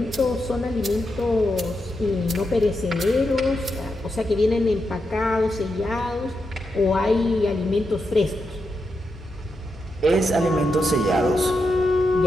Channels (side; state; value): both; normal; correlation 0.85